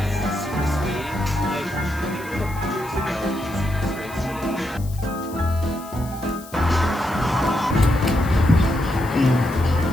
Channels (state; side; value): noise; left; hiss, 19 dB below the sound